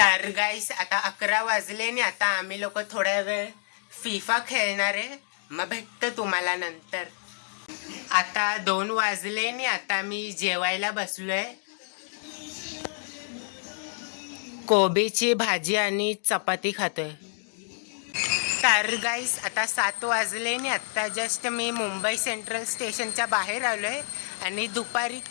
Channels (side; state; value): right; silent; digital silence